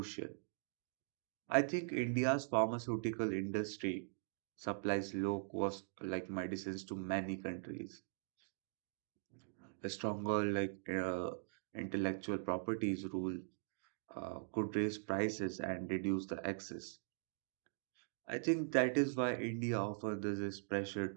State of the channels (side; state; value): left; silent; digital silence